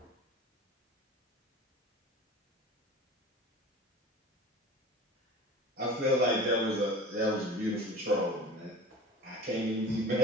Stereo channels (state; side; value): normal; both; correlation 0.39